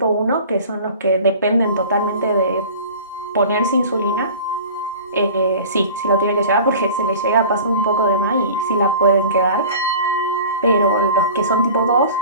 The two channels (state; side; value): inverted; both; correlation -0.40